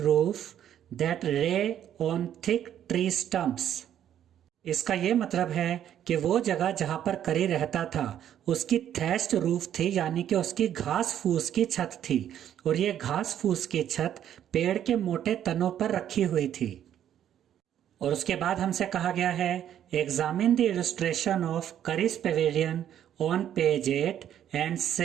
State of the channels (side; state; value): left; quieter; 10.4 dB